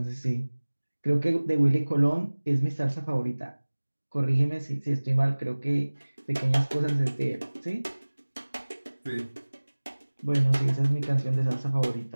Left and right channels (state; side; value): inverted; both; correlation -1.00